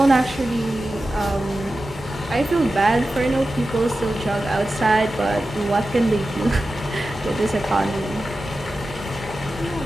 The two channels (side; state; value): both; normal; correlation 0.93